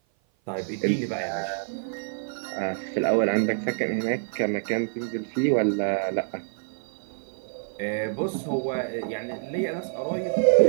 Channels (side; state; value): left; silent; 56 dB below the other